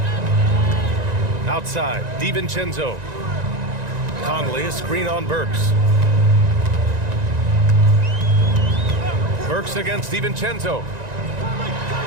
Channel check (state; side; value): late; left; 1.9 ms